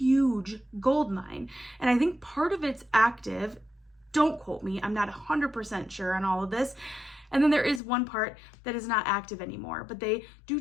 gold mine. And I think part of it's active. Don't quote me. I'm not 100% sure on all of this. And then there is one part that is not active anymore, but they do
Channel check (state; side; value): drops out; right; at 7.8 s